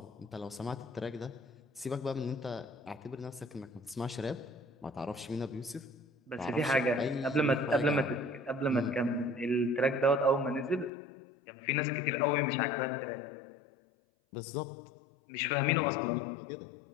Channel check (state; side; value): drops out; right; at 10.9 s